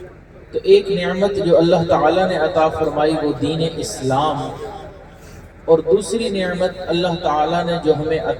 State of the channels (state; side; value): identical; both; correlation 1.00